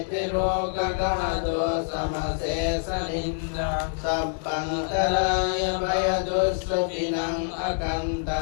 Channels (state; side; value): silent; right; digital silence